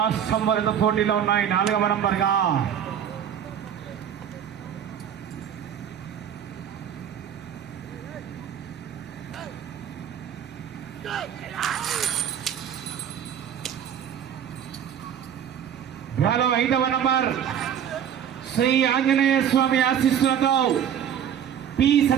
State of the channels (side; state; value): left; quieter; 9.1 dB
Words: వరద పోటీలో ఉన్నాయి. 4వ నంబర్గా డ్రాలో 5వ నంబర్ శ్రీ ఆంజనేయ స్వామి ఆశీస్సులతో పి